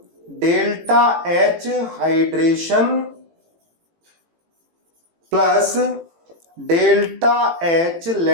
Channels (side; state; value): left; late; 18 ms